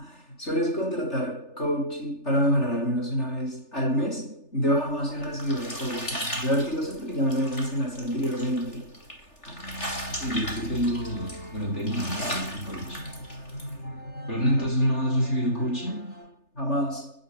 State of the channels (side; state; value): right; late; 3.4 ms